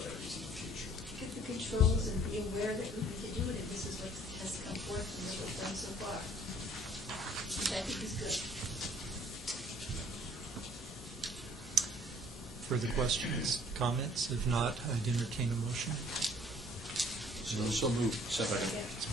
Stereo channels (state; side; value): normal; both; correlation 0.56